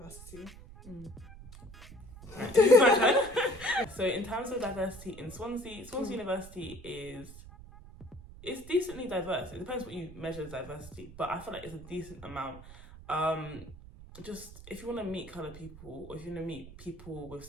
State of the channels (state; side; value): noise; right; rumble, 16 dB below the sound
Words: So in terms of diversity in Swansea University it's decently diverse. It depends what you measure as diversity, but I feel like it's a decent amount. Just if you want to meet coloured people, or if you want to meet people with